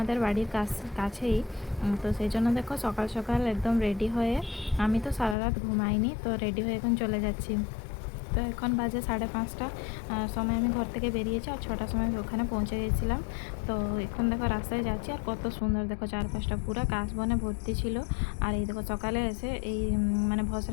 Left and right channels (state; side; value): drops out; right; at 5.4 s